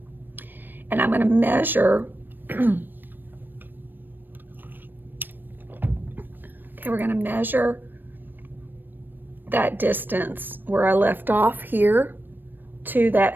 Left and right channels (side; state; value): left; late; 0.093 ms